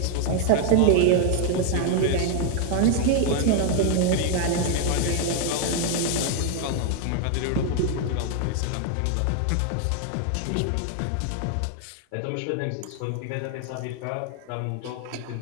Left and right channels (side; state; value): both; different; correlation 0.00